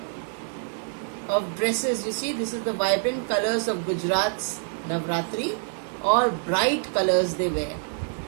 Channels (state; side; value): silent; left; 61 dB below the other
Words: of dresses. You see, this is the vibrant colors of Gujarat's Navratri. All bright colors they wear